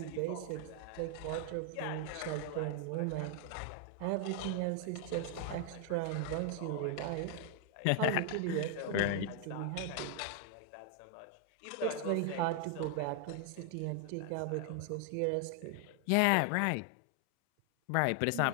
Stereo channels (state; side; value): different; both; correlation 0.00